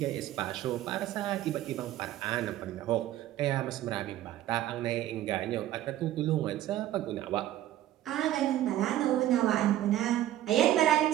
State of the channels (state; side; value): quieter; left; 13.3 dB